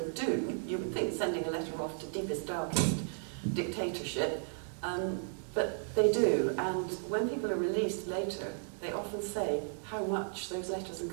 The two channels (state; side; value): silent; left; digital silence